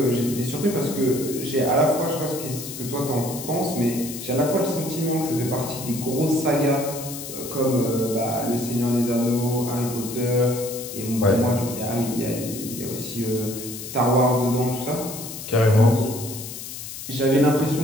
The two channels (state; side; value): noise; left; hiss, 10 dB below the sound